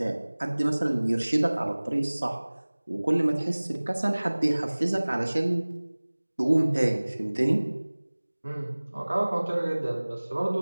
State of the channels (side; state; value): both; inverted; correlation -1.00